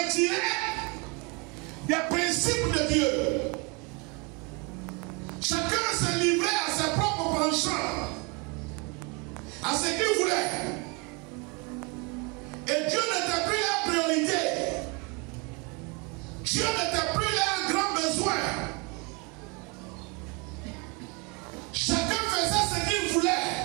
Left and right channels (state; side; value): quieter; left; 30.5 dB